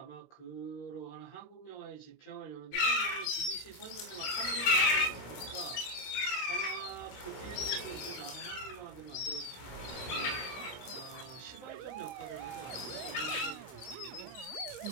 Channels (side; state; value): right; late; 16 ms